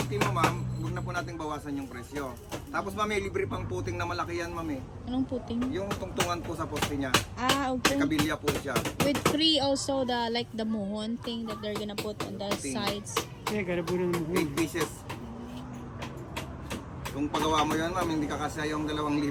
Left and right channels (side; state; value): both; identical; correlation 1.00